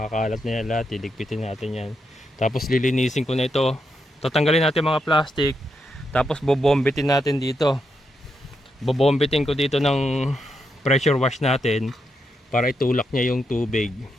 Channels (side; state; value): both; normal; correlation 0.82